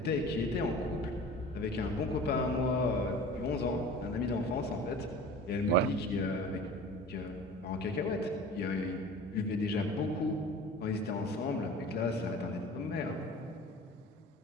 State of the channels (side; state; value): both; normal; correlation 0.40